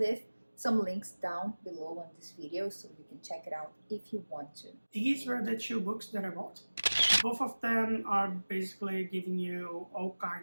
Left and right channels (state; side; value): inverted; both; correlation -1.00